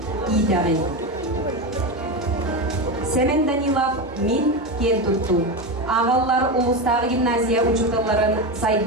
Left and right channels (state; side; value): normal; both; correlation 0.17